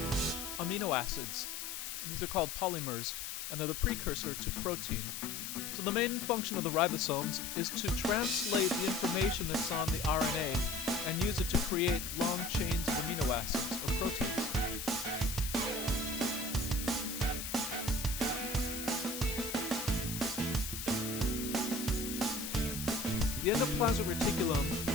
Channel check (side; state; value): left; noise; hiss, 6 dB below the sound